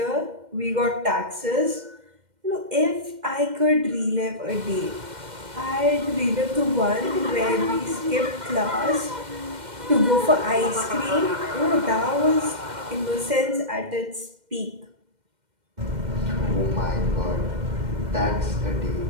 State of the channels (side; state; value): left; late; 2.1 ms